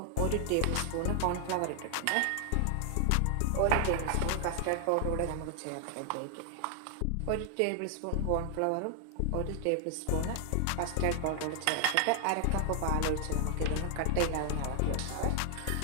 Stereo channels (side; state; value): both; different; correlation 0.00